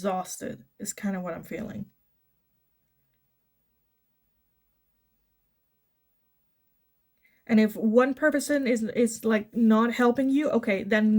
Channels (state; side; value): identical; both; correlation 1.00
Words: is kind of what I'm feeling. And if one person is like not helping you, okay, then